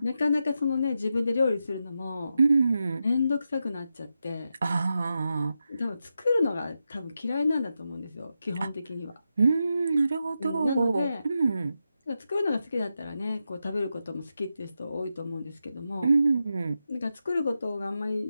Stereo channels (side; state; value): both; inverted; correlation -0.88